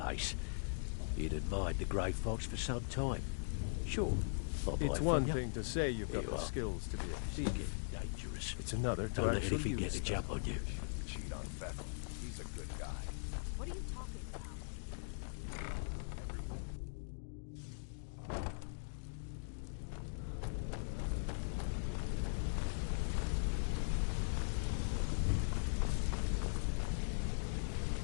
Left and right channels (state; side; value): silent; right; digital silence